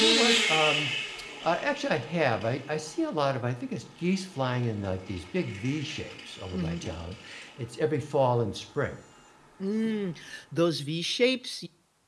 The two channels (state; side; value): identical; both; correlation 1.00